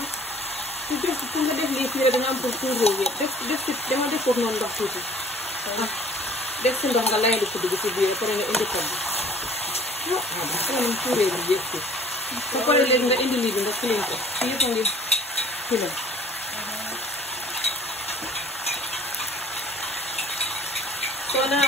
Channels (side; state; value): both; normal; correlation 0.52